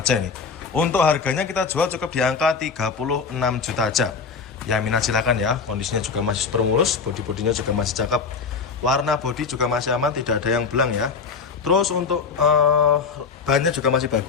ini. Untuk harganya kita jual cukup di angka 36 juta aja. Ya, minat silakan ya. Kondisinya juga masih super mulus, bodi-bodinya juga masih cakep. Warna bodi juga masih aman, tidak ada yang belang ya. Terus untuk bannya juga masih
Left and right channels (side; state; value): right; quieter; 5.3 dB